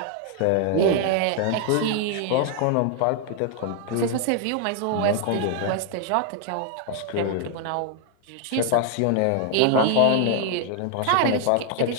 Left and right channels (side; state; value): both; different; correlation 0.00